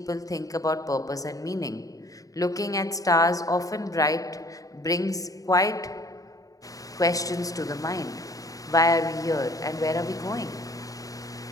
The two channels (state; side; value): late; right; 0.17 ms